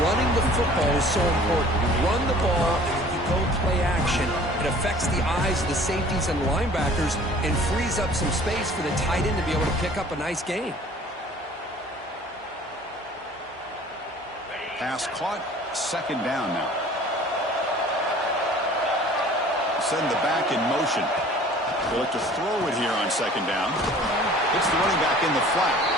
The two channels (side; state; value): both; normal; correlation 0.49